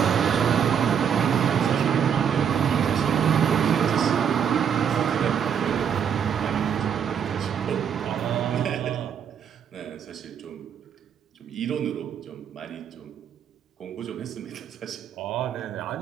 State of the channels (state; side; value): quieter; left; 7.9 dB